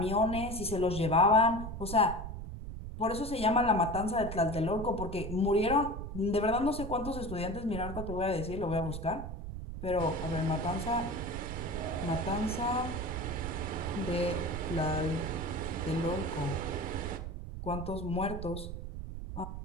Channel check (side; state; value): right; noise; rumble, 8 dB below the sound